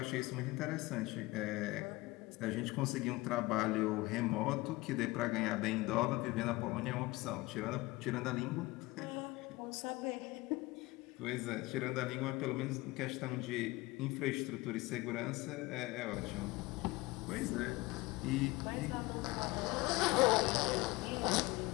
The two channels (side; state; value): right; quieter; 21.2 dB